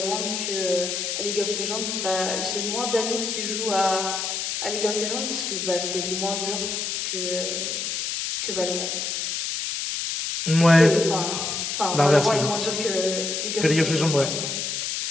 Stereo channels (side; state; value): left; noise; hiss, 2 dB below the sound